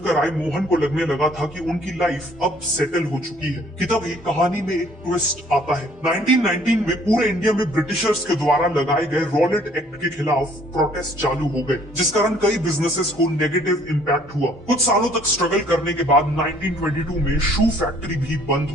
आए मोहन को लगने लगा था कि उनकी लाइफ अब सेटल हो चुकी है कि तभी कहानी में एक ट्विस्ट आता है। 1919 में पूरे इंडिया में ब्रिटिशर्स के द्वारा लगाए गए रॉलेट एक्ट के खिलाफ प्रोटेस्ट चालू हो गए, जिस कारण कई बिजनेसेस को नेगेटिव इम्पैक्ट हुआ। कुछ सालों तक स्ट्रगल करने के बाद 1922 में शू फैक्ट्री भी बंद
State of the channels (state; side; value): normal; both; correlation 0.59